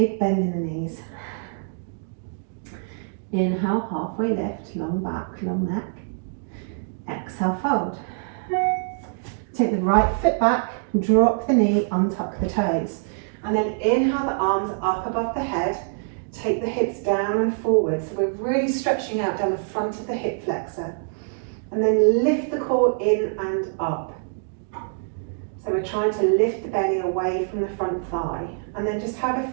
bend in the knees. Inhale, halfway lift, long back, long neck. Exhale, fold. Take the right foot back, drop the knee, untuck the toes. And then inhale the arms up above the head. Take the hips down and forward. So we're really stretching out down the front of the hip flexor. And then lift the core in and up. So we're trying to lift the belly away from the front thigh. And then just have a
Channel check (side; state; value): left; silent; digital silence